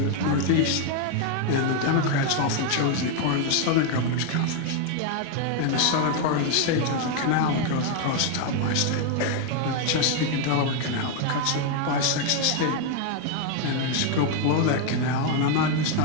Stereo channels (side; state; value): both; different; correlation 0.01